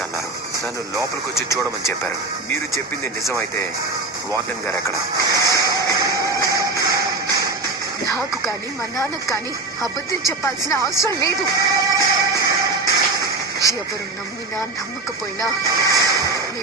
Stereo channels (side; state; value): left; quieter; 3.4 dB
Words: అన్నారు. నన్ను లోపలికి వచ్చి చూడమని చెప్పారు. మీరు చెప్పింది నిజమైతే వార్డెన్ గారు ఎక్కడ? నాకు కానీ మా నాన్నకు కానీ అబద్ధం చెప్పాల్సిన అవసరం లేదు. ఎవరు నమ్మినా నమ్మకపోయినా